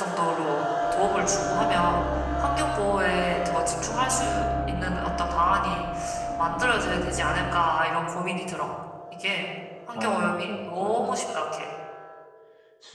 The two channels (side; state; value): both; identical; correlation 1.00